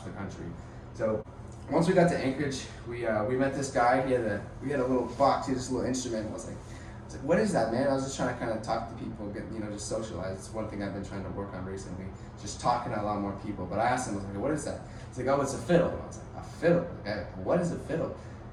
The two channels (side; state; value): both; identical; correlation 1.00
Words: the country. So once we got to Anchorage, we met this guy. We had a little box, he had this little instrument. I was like, what is that, man? I was just trying to kind of talk to people, get, you know, just socialize. It's one thing I've been trying to work on recently, just talking to a lot more people. But I asked him, I was like, what is that? He's like, oh, it's a fiddle. And I was like, a fiddle? Like, what is a fiddle?